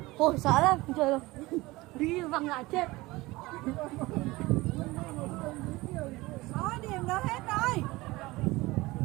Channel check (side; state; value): left; quieter; 20.7 dB